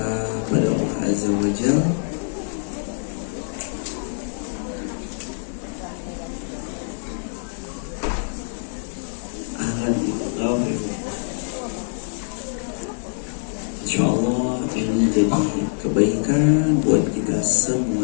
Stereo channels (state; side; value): silent; right; 63 dB below the other